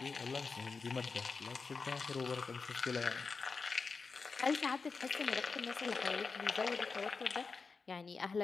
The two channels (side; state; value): right; quieter; 4.6 dB